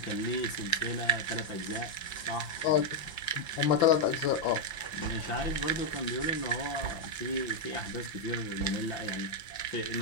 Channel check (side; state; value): right; late; 5.8 ms